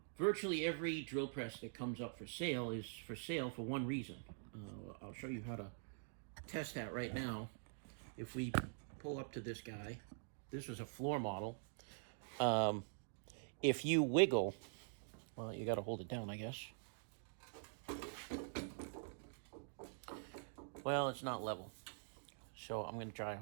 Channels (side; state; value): left; silent; digital silence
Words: virtually every drill press that comes up for sale is for sale for one reason. I'll show you how to test that right now. If we pull up to this guy, this was a floor model. Um, if you wiggle, well, you got to hold it down, I guess. Well, it's not level, so I'm going to try to